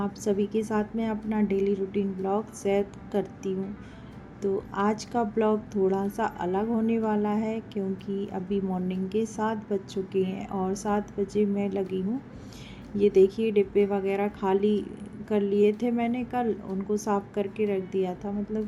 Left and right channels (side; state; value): both; identical; correlation 1.00